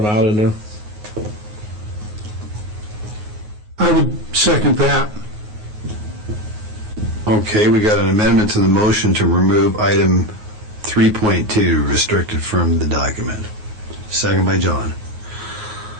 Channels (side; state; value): left; late; 9.5 ms